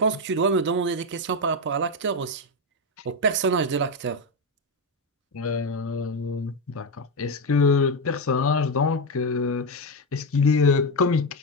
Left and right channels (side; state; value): both; normal; correlation 0.09